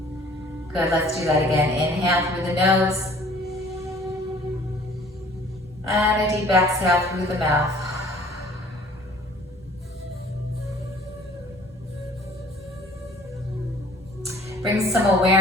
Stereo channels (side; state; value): both; normal; correlation 0.52